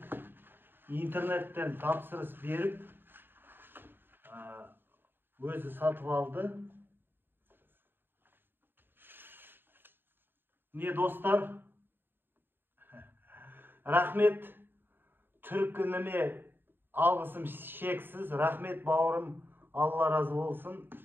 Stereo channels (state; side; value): late; left; 0.097 ms